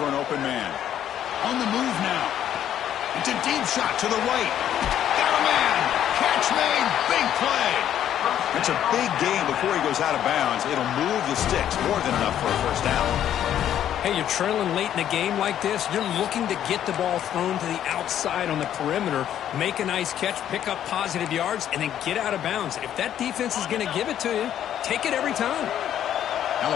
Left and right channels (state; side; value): quieter; right; 10.6 dB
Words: an open man. On the move now. It's a deep shot to the right. Got a man. Catch made. Big play. It's a big gain before he goes out of bounds. It'll move the sticks more than enough for a first down. Hey, you're trailing late in a game like this. You're looking to get the ball thrown to the outside on the perimeter, make a nice catch, pick up positive yards, and then get out of bounds. If that defense is going to give it to you, take it every time.